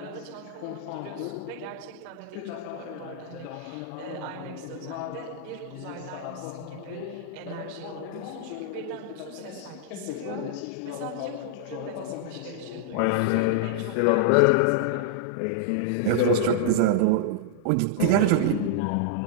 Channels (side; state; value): both; different; correlation -0.02